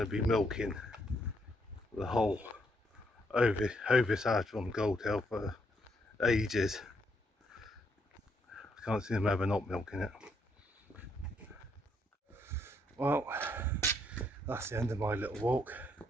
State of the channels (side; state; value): both; normal; correlation 0.74